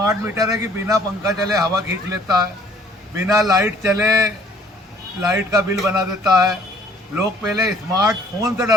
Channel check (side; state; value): both; normal; correlation 0.58